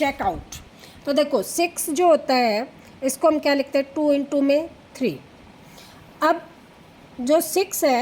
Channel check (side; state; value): both; identical; correlation 1.00